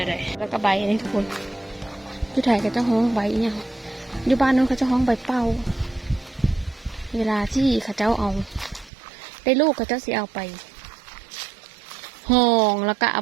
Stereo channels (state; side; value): drops out; left; at 8.9 s